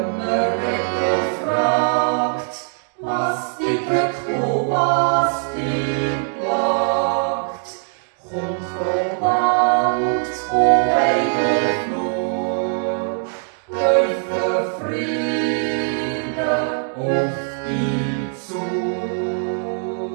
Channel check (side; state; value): left; silent; 56 dB below the other